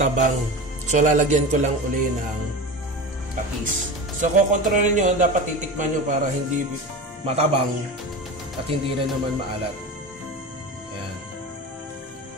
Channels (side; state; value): both; normal; correlation 0.28